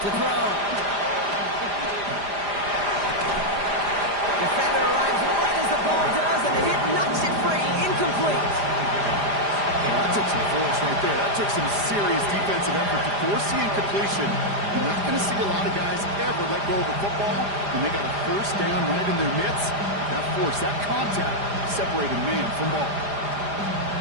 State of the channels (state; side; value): late; left; 4.9 ms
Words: throw. Defender arrives right as the ball does, and the hit knocks it free. Incomplete. Well, that took some force right there. That took some serious defensive effort to force the incompletion. You're not going to see a lot of guys ever let go of a football when they got a first down right in their midst. That force, that contact, separated man from ball.